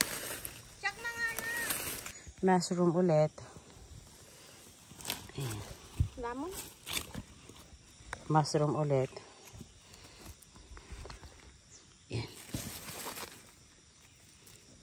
Check na nga na. Mushroom ulit. Ayan. Lamon? Mushroom ulit. Ayan.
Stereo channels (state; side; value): identical; both; correlation 1.00